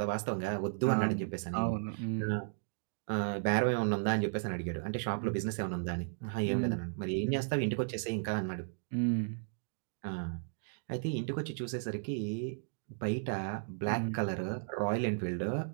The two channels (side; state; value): left; silent; digital silence